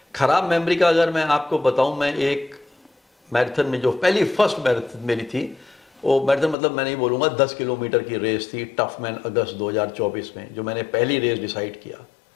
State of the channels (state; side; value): drops out; right; at 6.6 s